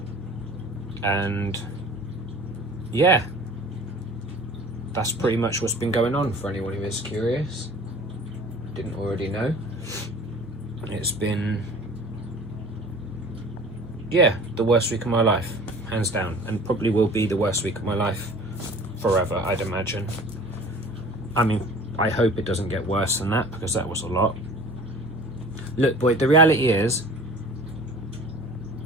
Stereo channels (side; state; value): both; normal; correlation 0.44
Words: And yeah, that's pretty much what's been going on, for anyone who is curious, didn't already know. It's been, yeah, the worst week of my life, hands down, and probably will be the worst week of my life forever, I'd imagine. I mean, I hope it doesn't get worse than that, because that was a lot. Look, boy, the reality is,